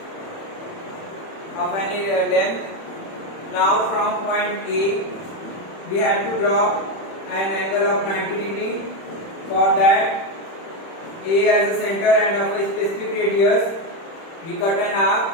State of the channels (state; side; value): late; right; 31 ms